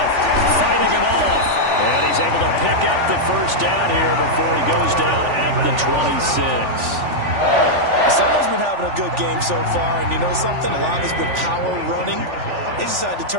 fighting him off. And he's able to pick up the first down here before he goes down at the 26. Someone's been having a good game so far, and you know something? A lot of it's been power running. They decided to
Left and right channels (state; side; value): late; left; 3.4 ms